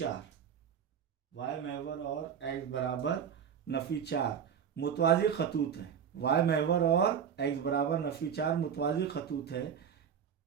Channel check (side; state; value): left; quieter; 8.0 dB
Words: वाई महवर और x बराबर नफ़ी 4 मुतवाज़ी खतूत है। वाई महवर और x बराबर नफ़ी 4 मुतवाज़ी खतूत है।